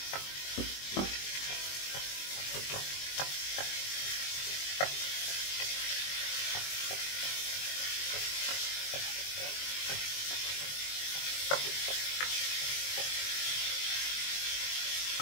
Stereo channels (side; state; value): right; late; 21 ms